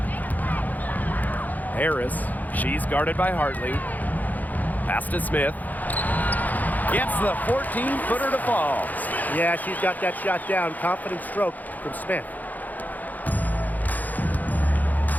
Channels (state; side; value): late; right; 0.082 ms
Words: Harris. She's guarded by Hartley. Pass to Smith. Gets the 14-footer to fall. Yeah, she's got that shot down. Confident stroke from Smith.